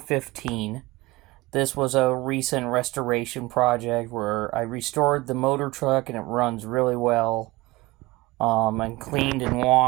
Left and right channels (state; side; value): quieter; left; 20.8 dB